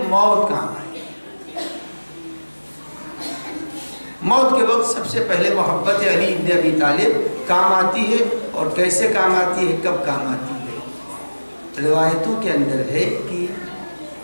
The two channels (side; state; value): both; inverted; correlation -1.00